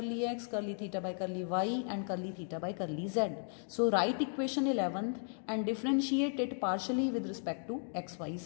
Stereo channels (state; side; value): silent; right; 54 dB below the other